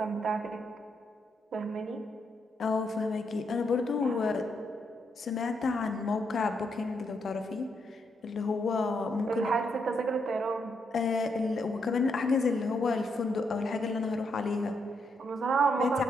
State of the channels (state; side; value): normal; both; correlation 0.78